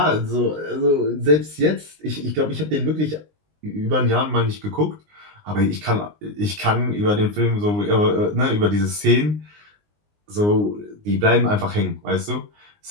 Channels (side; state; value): left; late; 19 ms